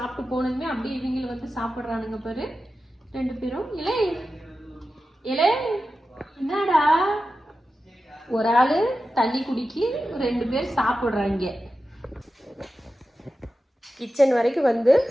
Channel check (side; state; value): both; normal; correlation 0.92